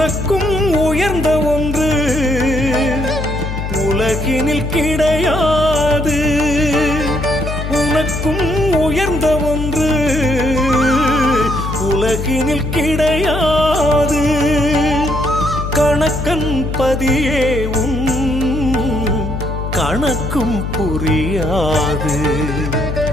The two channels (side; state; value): left; noise; hum, 4 dB below the sound